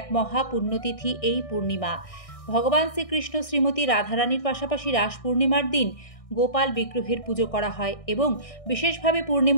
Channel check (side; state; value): right; late; 1.6 ms